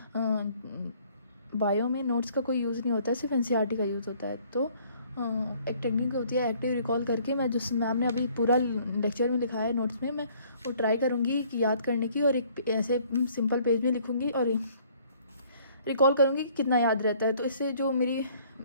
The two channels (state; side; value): inverted; both; correlation -0.59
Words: बायो में नोट्स का कोई यूज़ नहीं होता है, सिर्फ एनसीईआरटी का यूज़ होता है. तो एक टेक्निक होती है एक्टिव रिकॉल करके. मैं जिस मैम ने अभी पूरा लेक्चर में लिखा है नोट्स में, मैं वो ट्राई करूँगी कि याद करने की और एक ऐसे सिंपल पेज में लिखूँगी और रिकॉल करूँगी कि कितना याद रहता है. तो इससे जो मेरी